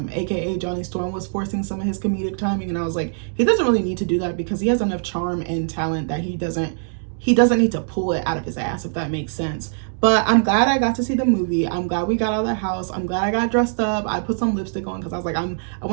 aka Johnny Storm, was forcing some of his comedic timing, and I was like, he doesn't really need to do that because he has enough charm and talent that he doesn't need to pull it out of his ass, if that makes sense. But I'm glad I got to see the movie. I'm glad we got out of the house. I'm glad I got dressed up. I put some lipstick on because I was like, I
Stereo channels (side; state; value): left; silent; digital silence